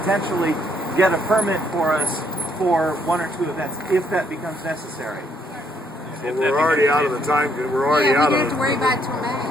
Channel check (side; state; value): both; normal; correlation 0.70